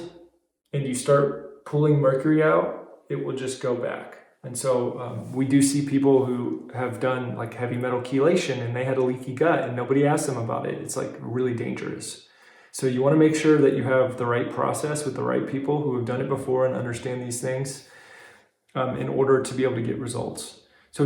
and you start pulling mercury out, it will just go back. And so we do see people who have done like heavy metal chelation and they had a leaky gut and nobody asked them about it. It's like really dangerous. So you want to make sure that you have the right process with the right people who have done it before and understand these things in order to be able to get results. So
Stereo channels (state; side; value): identical; both; correlation 1.00